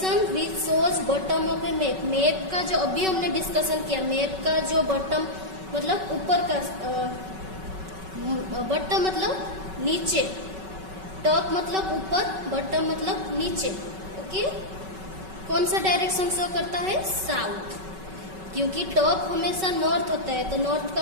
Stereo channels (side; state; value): left; late; 5.3 ms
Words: which shows bottom of a map. Map का जो अभी हमने डिस्कशन किया, मैप का जो बॉटम मतलब ऊपर का, बॉटम मतलब नीचे, टॉप मतलब ऊपर, बॉटम मतलब नीचे. ओके. कौन सा डायरेक्शन शो करता है? साउथ. क्योंकि टॉप हमेशा नॉर्थ होता है, तो नॉर्थ का